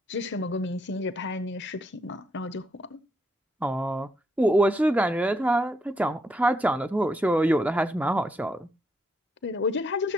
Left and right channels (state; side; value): normal; both; correlation 0.77